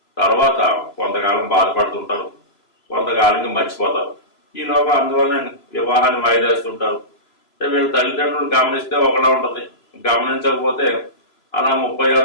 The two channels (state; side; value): late; right; 3.0 ms